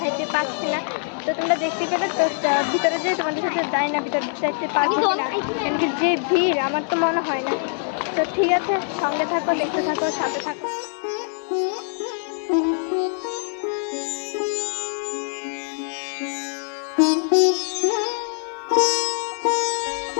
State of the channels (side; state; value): right; silent; 63 dB below the other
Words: হাঁটতে পারছি না। তো তোমরা দেখতেই পেলে। তো ভিতরে যে তোমাদের সাথে যাই না, ভিতরে যাইতে পারবো না, কেন কি যে ভিড় আমার তো মনে হয় না। তো ঠিক আছে, সঙ্গে থাকো, দেখতে থাকো, সাথে থাকো।